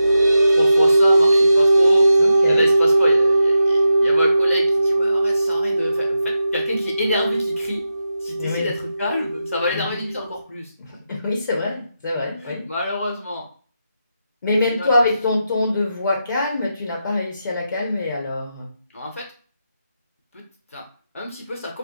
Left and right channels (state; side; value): inverted; both; correlation -0.88